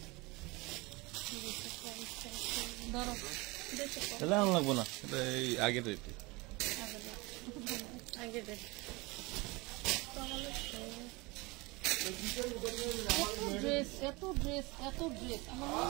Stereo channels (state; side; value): quieter; left; 24.5 dB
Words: ধরো তাহলে আন লাগবো না, এটা এই আগের রেটে। এত ড্রেস আমার মনে